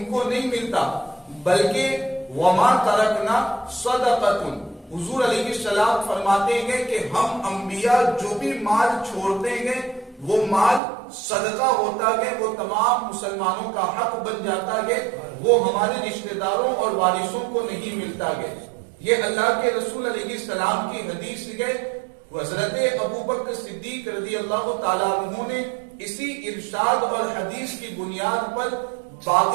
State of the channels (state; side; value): drops out; left; at 10.8 s